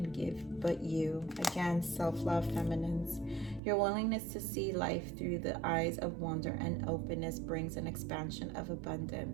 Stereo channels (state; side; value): drops out; left; at 3.6 s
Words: give but you. Again, self-love, feminines. Your willingness to see life through the eyes of wonder and openness brings an expansion of